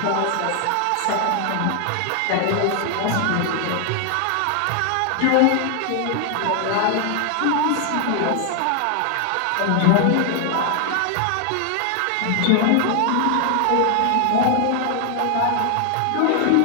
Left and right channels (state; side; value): different; both; correlation 0.00